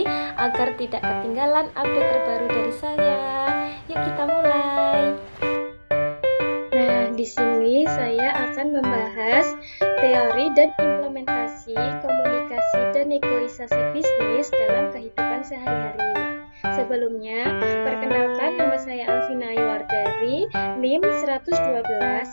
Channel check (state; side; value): inverted; both; correlation -1.00